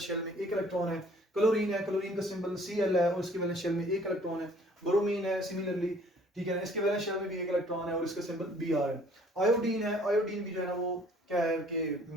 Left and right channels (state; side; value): normal; both; correlation 0.56